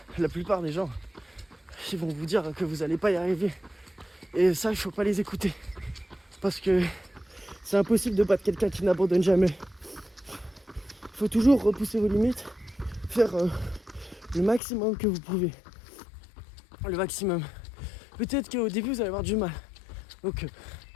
la plupart des gens qui vont vous dire que vous n'allez pas y arriver. Et ça, il faut pas les écouter. Parce que c'est impossible de battre quelqu'un qui n'abandonne jamais. Il faut toujours repousser vos limites, faire le maximum que vous pouvez. Le maximum. Peut-être qu'au début vous allez avoir du mal. Donc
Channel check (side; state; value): right; drops out; at 14.6 s